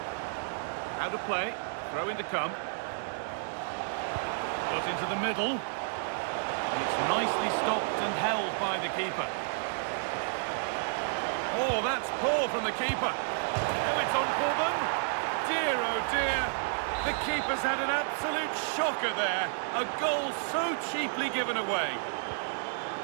Out of play. Throw in to come. Got into the middle. And it's nicely stopped and held by the keeper. Oh, that's poor from the keeper. Oh, it's on for them. Dear, oh dear. The keeper's had an absolute shocker there. A goal so cheaply given away.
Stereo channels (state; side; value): silent; left; digital silence